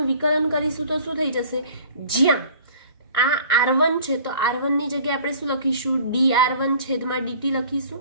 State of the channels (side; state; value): both; inverted; correlation -0.49